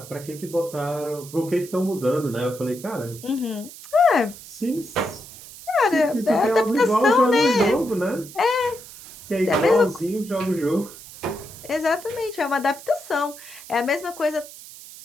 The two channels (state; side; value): noise; right; hiss, 16 dB below the sound